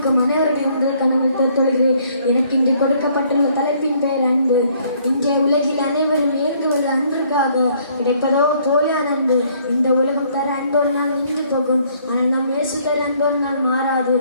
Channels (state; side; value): inverted; both; correlation -0.64